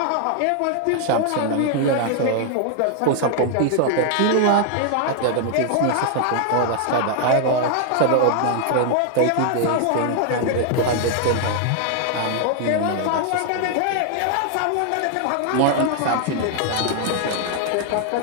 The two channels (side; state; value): both; different; correlation 0.00